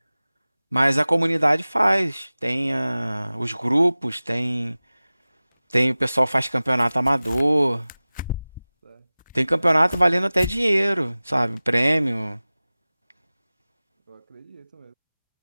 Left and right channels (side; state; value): both; inverted; correlation -0.98